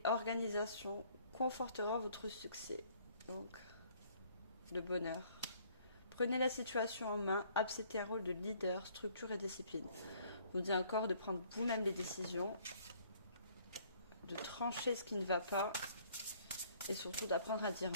organisation confortera votre succès. Donc, le bonheur. Prenez la situation en main, acceptez un rôle de leader, structure et discipline. Je vous dis encore de prendre vous-même les décisions, de trancher ce qui ne va pas et surtout d'apprendre à dire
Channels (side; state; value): both; inverted; correlation -0.58